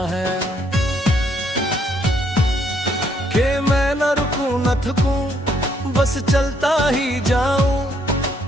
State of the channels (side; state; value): both; normal; correlation 0.70